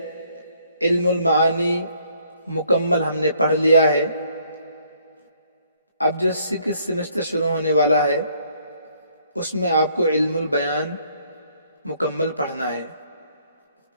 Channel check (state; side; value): inverted; both; correlation -0.65